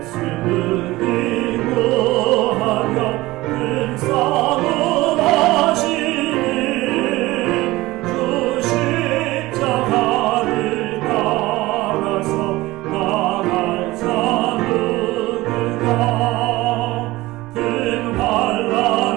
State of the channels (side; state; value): left; quieter; 19.1 dB